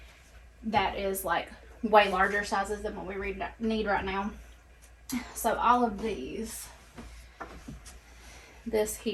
That is like way larger sizes than what we need right now. So all of these, this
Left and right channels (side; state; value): both; identical; correlation 1.00